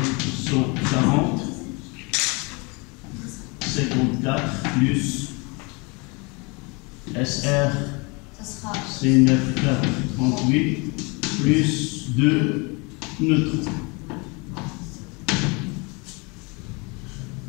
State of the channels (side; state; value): right; quieter; 29.4 dB